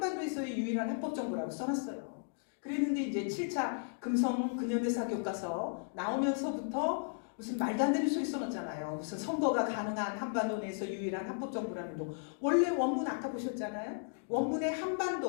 유일한 합법 정부라고 써놨어요. 그랬는데 이제 7차 금성근현대사 교과서 나오면서부터 무슨 말도 안 되는 소리 써놨잖아요. 무슨 선거가 가능한 한반도 내에서 유일한 합법 정부라는 동. 원래 원문 아까 보셨잖아요. 원문에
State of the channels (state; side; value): silent; right; digital silence